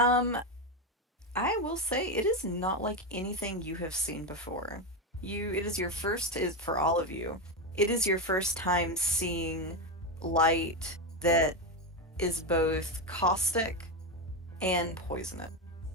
will say it is not like anything you have seen before. It is your first, is for all of you. It is your first time seeing light that is both caustic and poisonous.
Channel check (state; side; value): normal; both; correlation 0.11